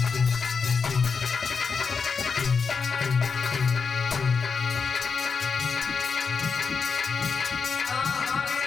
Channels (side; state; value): right; quieter; 5.4 dB